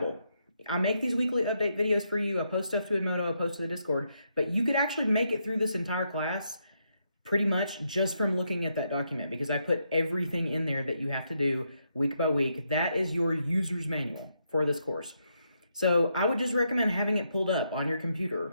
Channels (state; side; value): inverted; both; correlation -0.79